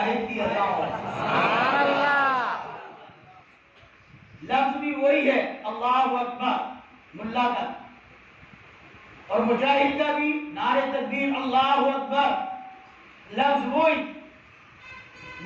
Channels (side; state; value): both; identical; correlation 1.00